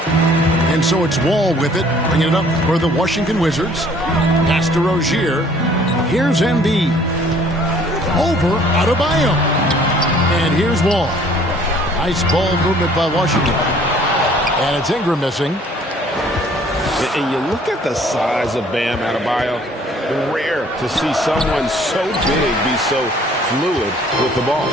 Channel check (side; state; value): both; normal; correlation 0.57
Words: And so it's Wall with it, bringing it up for the Washington Wizards. Pass to Rozier. Here's Embiid. Over Adebayo. And here's Wall. Nice ball movement by Washington. And it's Ingram missing. And you look at the size of Bam Adebayo. Rare to see someone so big be so fluid with the ball.